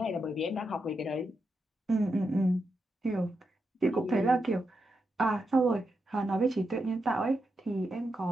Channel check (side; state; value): both; normal; correlation 0.86